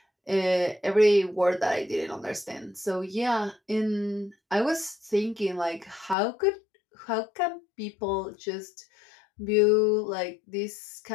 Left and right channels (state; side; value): drops out; right; at 6.2 s